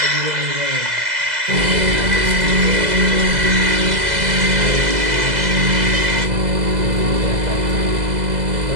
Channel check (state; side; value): late; left; 2.0 ms